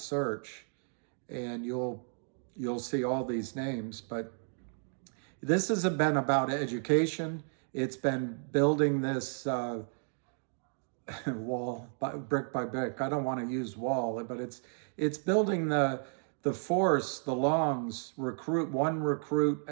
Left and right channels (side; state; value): left; silent; 56 dB below the other